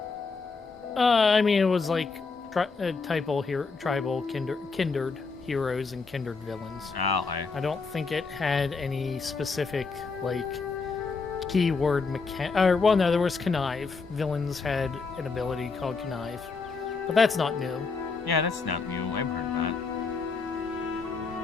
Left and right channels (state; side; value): quieter; right; 4.5 dB